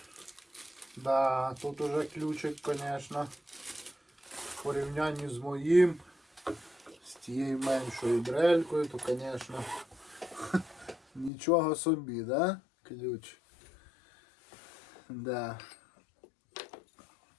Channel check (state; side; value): drops out; right; at 11.3 s